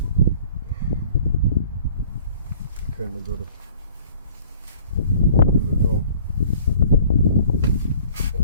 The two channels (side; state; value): both; inverted; correlation -0.53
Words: Kind of got to pull it on.